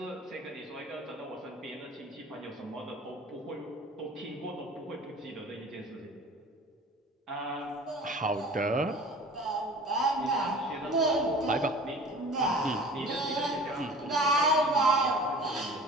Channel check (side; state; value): both; normal; correlation 0.42